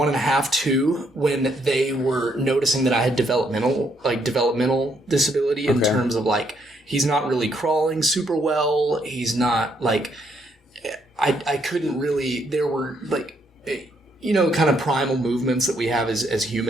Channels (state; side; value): normal; both; correlation 0.72